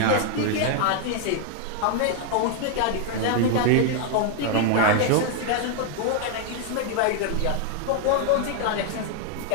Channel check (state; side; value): different; both; correlation 0.00